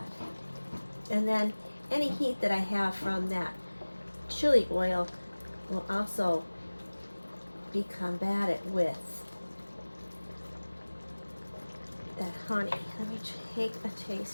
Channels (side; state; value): both; inverted; correlation -1.00